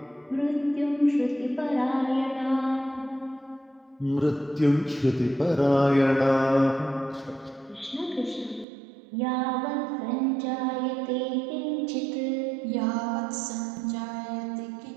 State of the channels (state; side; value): drops out; left; at 8.7 s